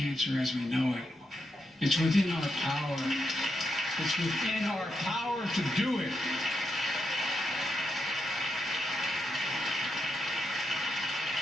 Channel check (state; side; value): normal; both; correlation 0.83